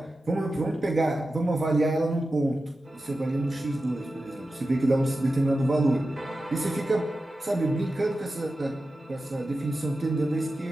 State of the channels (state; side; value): normal; both; correlation 0.93